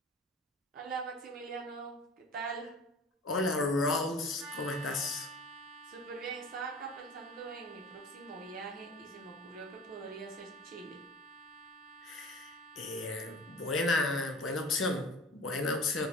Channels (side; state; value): both; normal; correlation 0.40